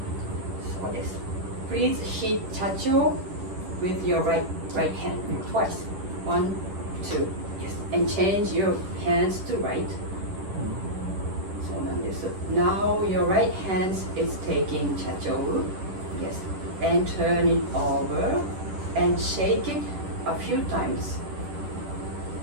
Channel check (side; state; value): left; late; 10 ms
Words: そうです。Please hit chacho with your right hand twice. 1, 2. Yes. And change your hands to right. そうなんです。Now your right hand is taking chacho. Yes. And turn it over and shake it a few times.